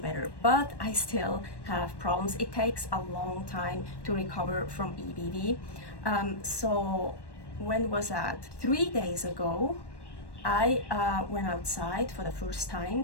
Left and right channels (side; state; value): right; late; 1.1 ms